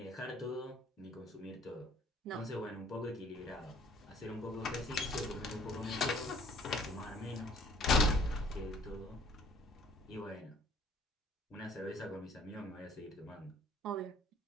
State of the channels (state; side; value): normal; both; correlation 0.57